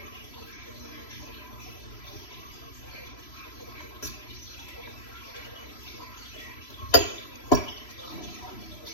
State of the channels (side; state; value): right; late; 3.0 ms